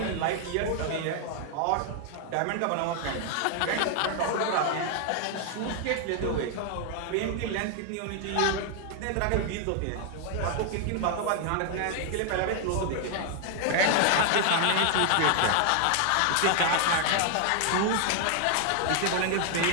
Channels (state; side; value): different; both; correlation 0.00